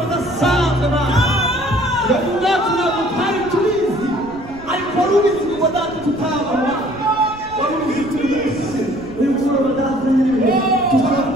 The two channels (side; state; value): right; noise; rumble, 18 dB below the sound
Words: udasanzwe nawe ubwacu ntabwo twari tubizi ariko wari ubizi ngo data tutabona wari ubizi turi munsi uyu mugoroba data nyine